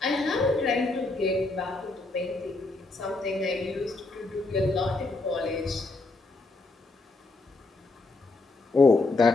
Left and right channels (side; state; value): right; quieter; 3.3 dB